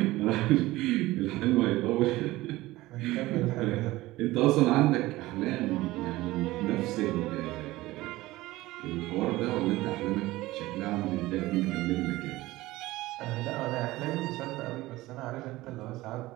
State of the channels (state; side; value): quieter; left; 18.3 dB